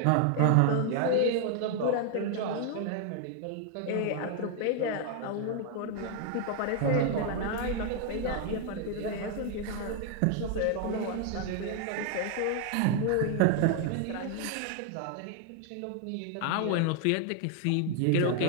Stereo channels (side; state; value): both; different; correlation 0.00